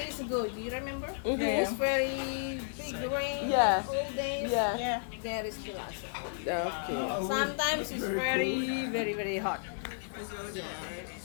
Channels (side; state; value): right; silent; digital silence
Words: ago, do you remember? Mhm. It's very big rain. Yeah. All days. Yeah. Yeah. There is still outside. Okay. Sometimes it's very, very, very hot.